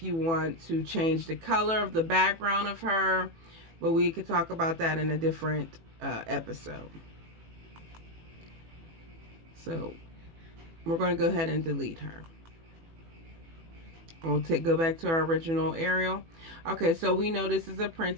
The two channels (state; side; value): late; left; 18 ms